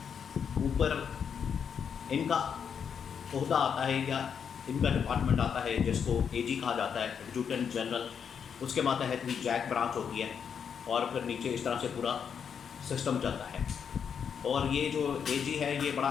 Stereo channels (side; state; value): right; quieter; 7.2 dB